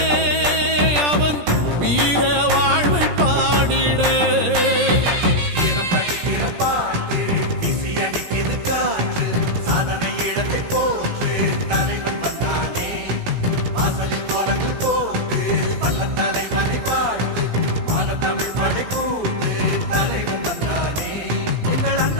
அவன் வீர வாழ்வை பாடிட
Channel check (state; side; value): late; left; 17 ms